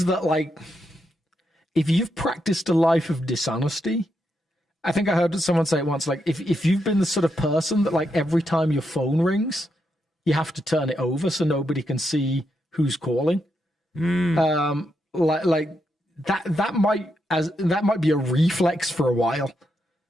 that, like, if you've practiced a life of dishonesty, I think I heard someone say it once, like, if you've been the sort of person that, like, every time your phone rings, you have to turn it over so nobody can see who's calling. Like that might be a reflex for a while.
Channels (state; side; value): normal; both; correlation 0.82